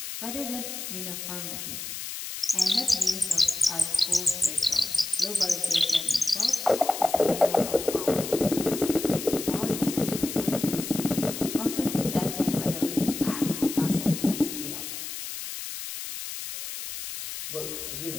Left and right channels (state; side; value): noise; left; hiss, 7 dB below the sound